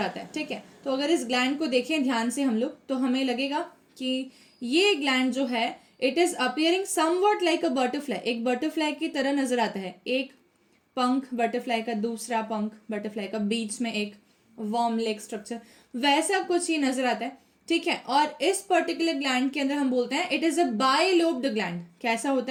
है. ठीक है, तो अगर इस ग्लैंड को देखें ध्यान से हम लोग, तो हमें लगेगा कि ये ग्लैंड जो है it is appearing somewhat like a butterfly, एक बटरफ्लाई की तरह नजर आता है. एक पंख बटरफ्लाई का, दूसरा पंख बटरफ्लाई का, बीच में एक वॉर्म लेग स्ट्रक्चर, वैसा कुछ ही नजर आता है. ठीक है, और इस पर्टिकुलर ग्लैंड के अंदर हम बोलते हैं it is a bilobed gland. कैसा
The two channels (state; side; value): identical; both; correlation 1.00